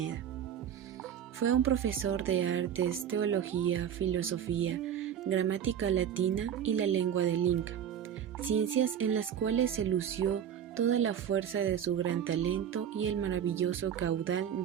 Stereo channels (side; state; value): left; quieter; 9.1 dB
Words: Fue un profesor de artes, teología, filosofía, gramática latina y la lengua del Inca, ciencias en las cuales se lució toda la fuerza de su gran talento y el maravilloso caudal